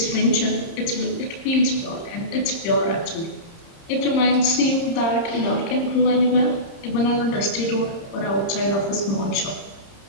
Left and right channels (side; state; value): right; late; 30 ms